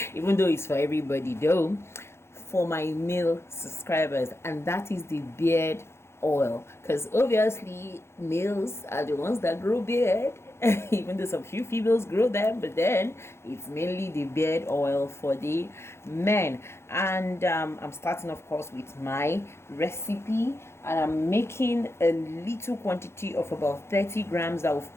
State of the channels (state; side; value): late; right; 0.12 ms